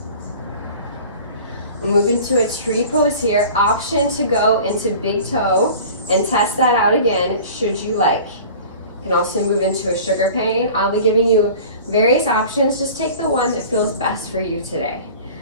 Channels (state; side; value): inverted; both; correlation -0.42